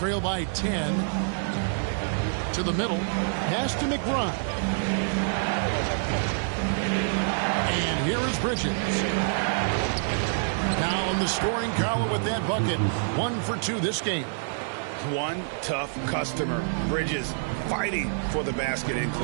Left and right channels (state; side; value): silent; left; 60 dB below the other